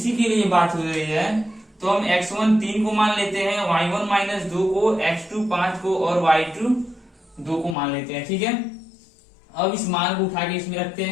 के लिए बात हो रही है तो हम x1 3 को मान लेते हैं, y1 माइनस 2 को, x2 5 को और y2 2 को मान लेते हैं, ठीक है। अब इस मान को उठा के इसमें रखते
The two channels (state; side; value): drops out; right; at 7.8 s